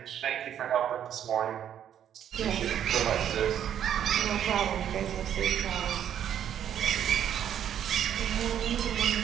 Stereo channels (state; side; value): quieter; left; 9.8 dB